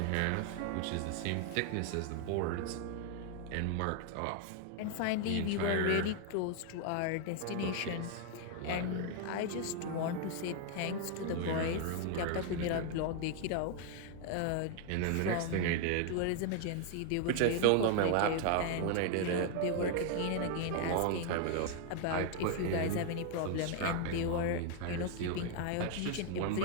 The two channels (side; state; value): both; different; correlation 0.00